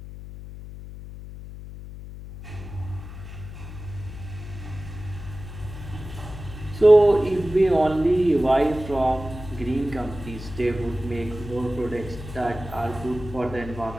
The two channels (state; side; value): noise; left; hum, 12 dB below the sound